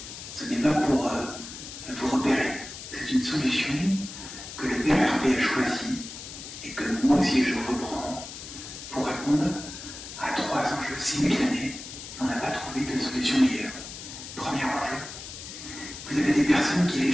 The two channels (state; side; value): noise; left; hiss, 11 dB below the sound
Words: Ce n'est pas pour vous repérer. C'est une solution que le Père Hervé a choisie et que moi aussi je reprends pour répondre à 3 enjeux simultanés. On n'a pas trouvé de solution meilleure. Premier enjeu, vous avez des personnes qui